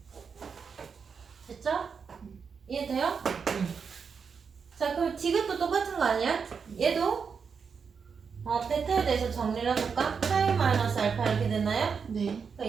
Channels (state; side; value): quieter; left; 6.0 dB